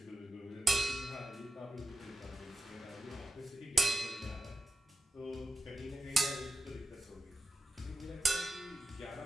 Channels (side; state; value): both; normal; correlation 0.92